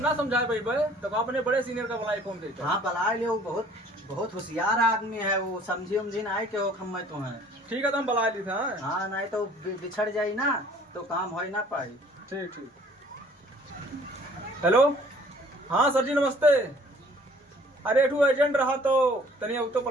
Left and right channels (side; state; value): both; normal; correlation 0.54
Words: समझाए भाई तो आपने बड़े सीनियर का बुलाई फोन देते। हाँ बला लियो, बहुत बहुत होशियार आदमी है वो, समझी उमझी ना आए के हो खम्मे तो है। ठीक है तो हम बुला ली था। हाँ नहीं तो बिछड़ जाई ना तो काम हो ना पाई। ठीक ठीक। हेलो हाँ सर जी नमस्ते। अरे एठू एजेंट रहा तो तनिया तो